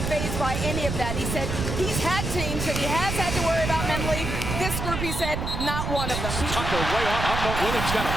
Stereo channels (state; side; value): noise; right; rumble, 3 dB below the sound